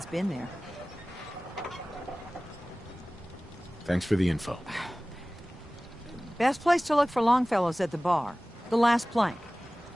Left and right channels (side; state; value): both; normal; correlation 0.98